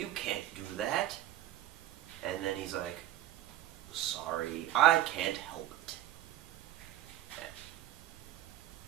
can't do that. And then he's like, sorry, I can't help it.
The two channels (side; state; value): left; quieter; 13.7 dB